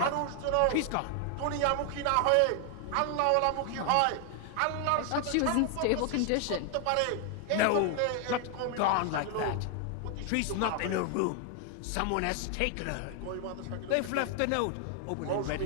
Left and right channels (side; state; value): both; different; correlation 0.00